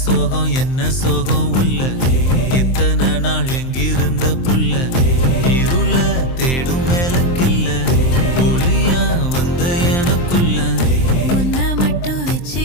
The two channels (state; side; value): late; right; 23 ms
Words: சோகம் என்ன சோகம் உள்ள இத்தனை நாள் எங்கிருந்த புல்ல இருள தேடும் வேலைக்கில்ல ஒளியா வந்த எனக்குள்ள உன்னை மட்டும்